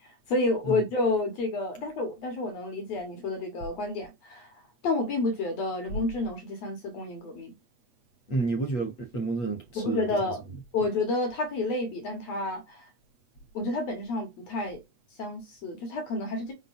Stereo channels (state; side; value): late; right; 8.3 ms